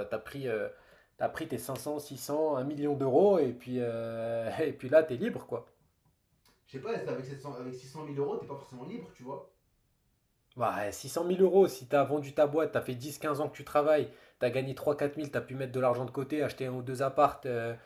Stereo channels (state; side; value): identical; both; correlation 1.00